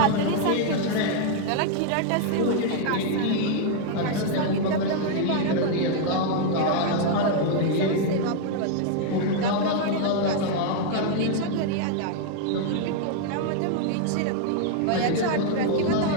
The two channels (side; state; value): both; different; correlation 0.00